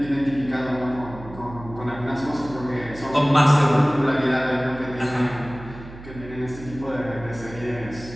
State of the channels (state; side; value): noise; right; hum, 15 dB below the sound